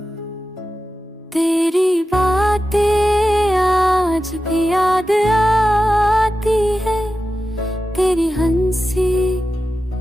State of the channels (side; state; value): both; normal; correlation 0.92